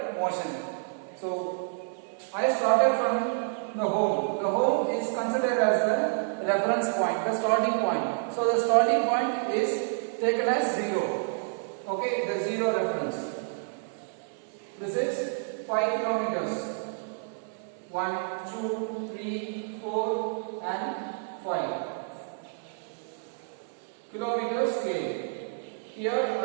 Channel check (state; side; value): silent; left; 57 dB below the other